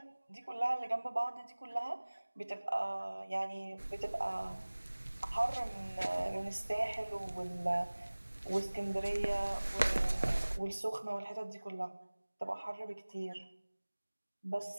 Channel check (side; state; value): both; inverted; correlation -1.00